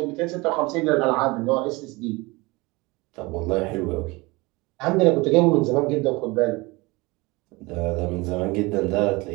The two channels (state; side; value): quieter; left; 23.9 dB